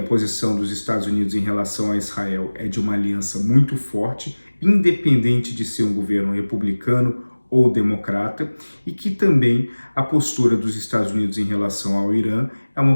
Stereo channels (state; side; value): inverted; both; correlation -1.00